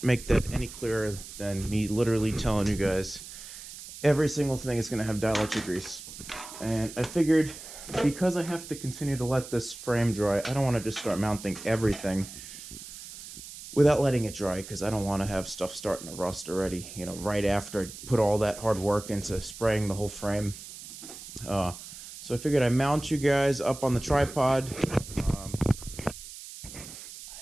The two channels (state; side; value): noise; right; hiss, 13 dB below the sound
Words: make that any clearer than me literally telling you guys. Every single thing is going to have dielectric grease. And I figured, because I have to continue to let this frame dry, I don't want to just start mounting everything without letting it dry, because I don't want to have stuff starting to rust already, you know, right after I put all that hard work into spraying the whole frame. So I figured I'd mount you guys up on the tripod.